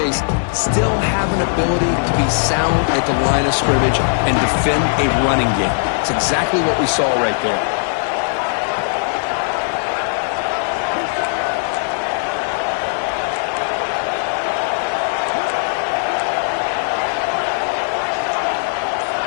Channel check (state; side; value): silent; right; 67 dB below the other